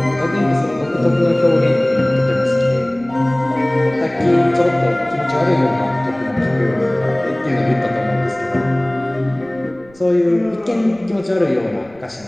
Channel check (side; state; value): right; noise; rumble, 27 dB below the sound